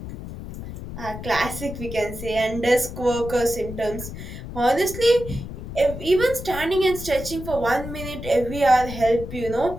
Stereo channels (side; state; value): left; noise; rumble, 10 dB below the sound